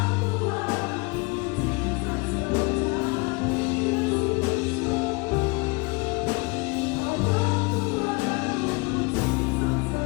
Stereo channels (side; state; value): right; quieter; 27.7 dB